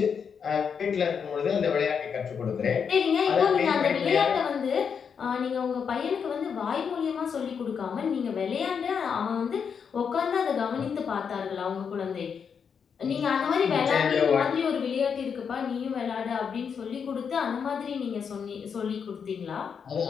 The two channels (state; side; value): quieter; right; 6.7 dB